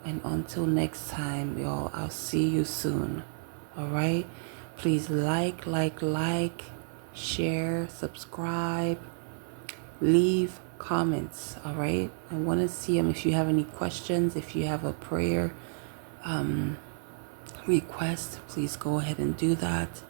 and until next time, y'all, I'll see you soon. All right? Please like, share, subscribe, leave comments. All right? I want to see them. If you have any questions, if you have a prayer request, please go ahead and do that.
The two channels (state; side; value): silent; left; 57 dB below the other